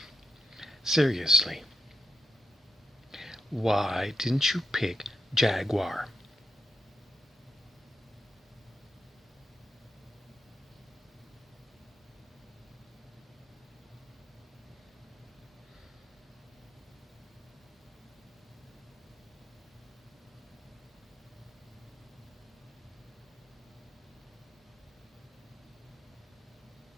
seriously, why didn't you pick jaguar?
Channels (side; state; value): both; normal; correlation 0.83